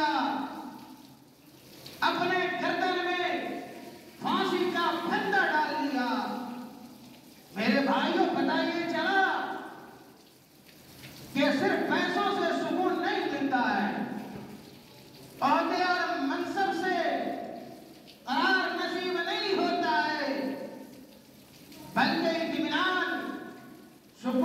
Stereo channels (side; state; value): both; identical; correlation 1.00